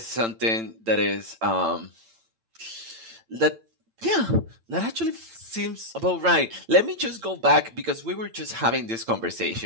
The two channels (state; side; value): late; left; 8.9 ms